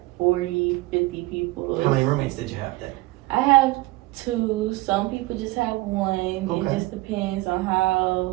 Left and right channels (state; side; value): quieter; left; 20.7 dB